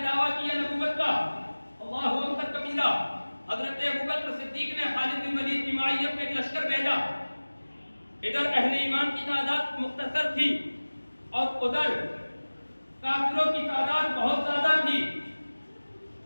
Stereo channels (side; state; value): both; inverted; correlation -1.00